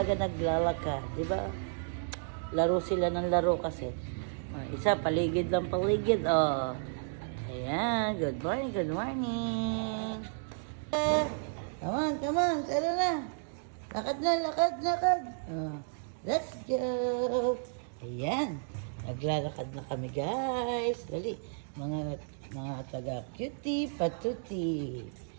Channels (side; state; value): left; silent; digital silence